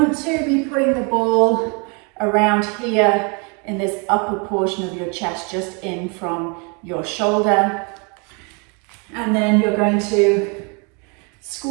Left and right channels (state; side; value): quieter; left; 33.8 dB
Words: to be putting the ball around here in this upper portion of your chest, just in from your shoulder. And then you're going to